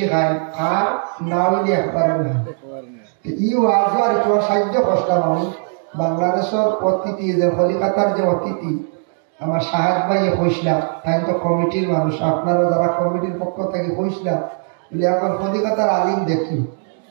খায়, আর না হইলে একবারে না। ই ওয়াজ আর একটু সাহায্য করতাম আমি। বাংলাদেশের অতিথি যে কলিকাতার যে অতিথি আমার সাহেব ভাইয়ে কইসলাম, তাই তো কমিটির মানুষ, আপনারা যারা কমিটির পক্ষ থেকে কইসলাম বলে এখন কলিকাতার আলিম দেখি।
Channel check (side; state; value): left; silent; 61 dB below the other